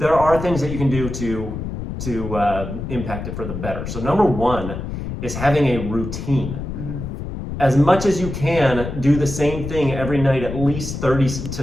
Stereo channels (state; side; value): noise; left; rumble, 7 dB below the sound